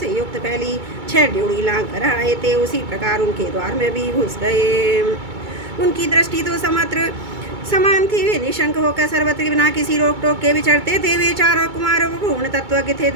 युक्त फैली 6 ड्योढ़ी लांघ कर आए थे, उसी प्रकार उनके द्वार में भी घुस गए। उनकी दृष्टि तो समत्र समान थी। वे निशंक होकर सर्वत्र बिना किसी रोक टोक के विचरते थे। वे चारों कुमारों पूर्ण तत्वज्ञ थे।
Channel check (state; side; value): late; left; 2.3 ms